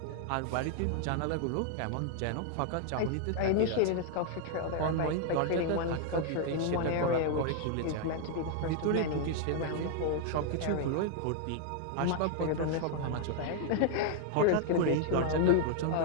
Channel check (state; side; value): different; both; correlation 0.00